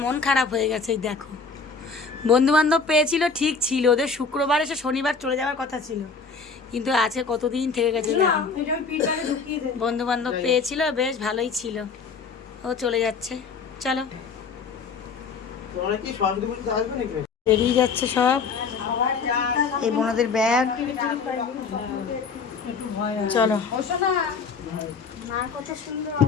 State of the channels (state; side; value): quieter; right; 4.9 dB